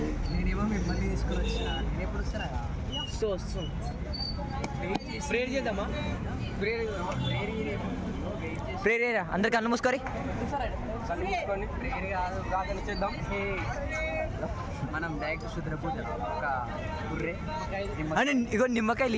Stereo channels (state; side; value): identical; both; correlation 1.00